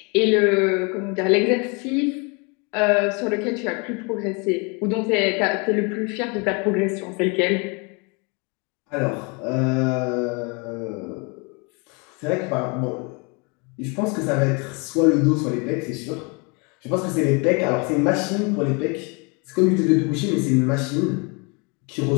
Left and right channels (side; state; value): right; quieter; 31.9 dB